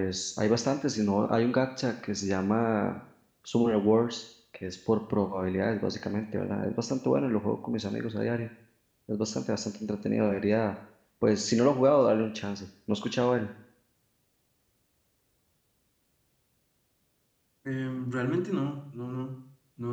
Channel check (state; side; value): identical; both; correlation 1.00